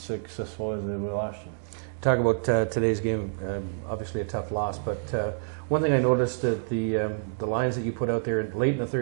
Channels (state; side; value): silent; left; digital silence